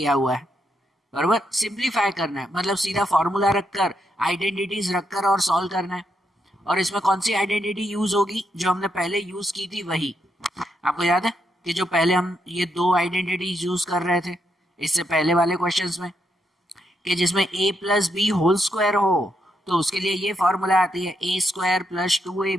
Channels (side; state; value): both; normal; correlation 0.80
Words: हुआ है। बराबर, सिंप्लीफाई करना है मतलब सीधा फॉर्मूला रखकर, आइडेंटिटीज रखकर और सॉल्व करना है। और इसमें कौन सी आइडेंटिटी यूज होगी? जो हमने पहले यूज की थी वही। आपको याद है कि जो पहले हम ये दो आइडेंटिटीज यूज कर रहे थे इससे पहले वाले क्वेश्चंस में, कि जिसमें a plus B whole square हो, तो उसके लिए ये फॉर्मूला आती है a square plus